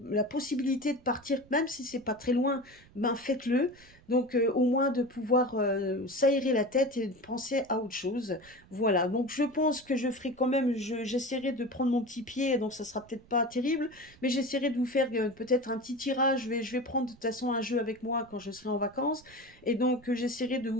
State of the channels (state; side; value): noise; right; rumble, 25 dB below the sound